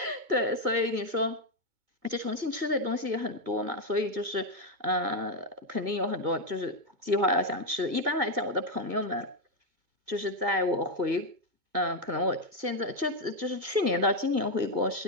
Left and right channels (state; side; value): late; left; 2.2 ms